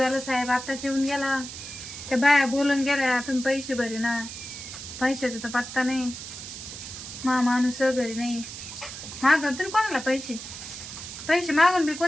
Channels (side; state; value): right; noise; hiss, 10 dB below the sound